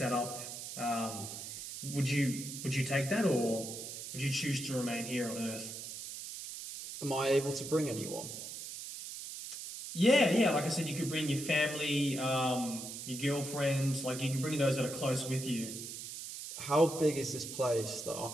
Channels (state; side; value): noise; right; hiss, 8 dB below the sound